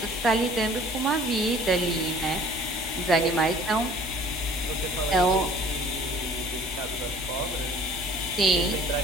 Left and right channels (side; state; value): both; normal; correlation 0.51